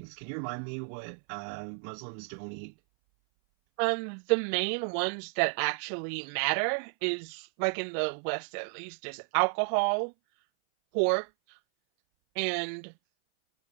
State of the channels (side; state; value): left; silent; 56 dB below the other